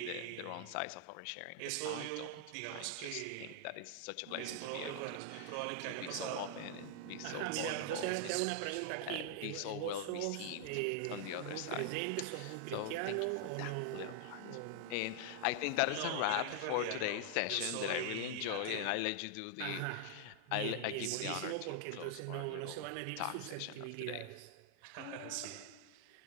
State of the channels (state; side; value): different; both; correlation 0.00